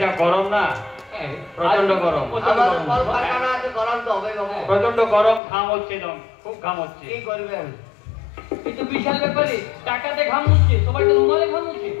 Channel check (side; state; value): right; drops out; at 5.4 s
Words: যা গরম না, প্রচন্ড গরম। প্রচন্ড গরম, ঘাম হচ্ছে, একদম খুব ঘাম হচ্ছে। কি করবেন? কিন্তু বিশাল ব্যাপারে, টাকাতে ঘাম হচ্ছে, সবাই তো রুমালে ঘাম হচ্ছে।